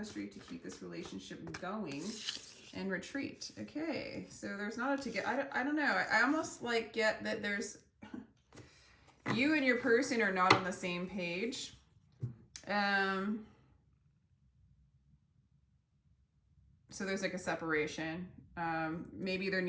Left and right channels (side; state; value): both; identical; correlation 1.00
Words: to keep this relationship going. And retreat. Okay, so there's not a to get. I don't know. I almost like get that there's you and your person are not on the same page. So there's like a separation. Maybe there